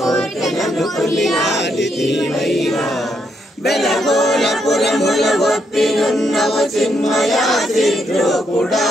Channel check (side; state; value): both; normal; correlation 0.77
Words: కొలియాడితివైనా బెలగోళపురముల ఒప్పినున్నవు చిన్మయా